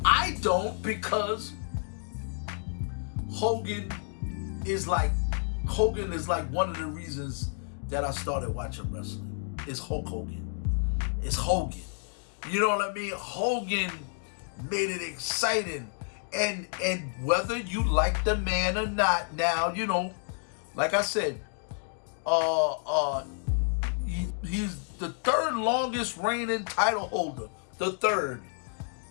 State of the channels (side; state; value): right; silent; 58 dB below the other